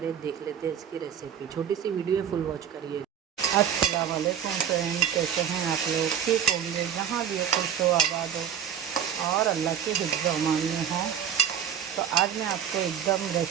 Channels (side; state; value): left; quieter; 8.8 dB